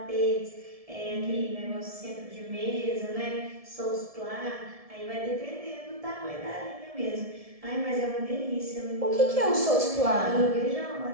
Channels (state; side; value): late; left; 1.7 ms